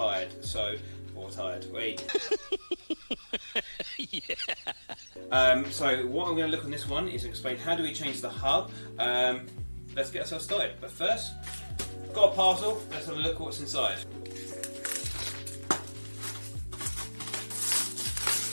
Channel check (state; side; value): inverted; both; correlation -1.00